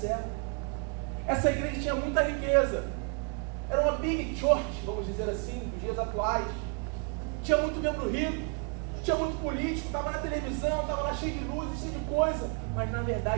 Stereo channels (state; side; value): quieter; left; 37.0 dB